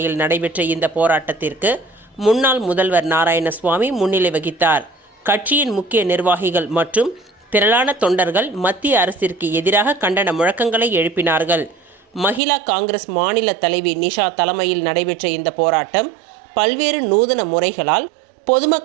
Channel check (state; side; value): drops out; left; at 12.4 s